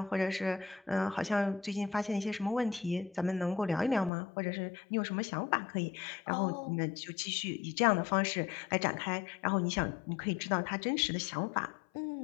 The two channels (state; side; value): drops out; right; at 4.1 s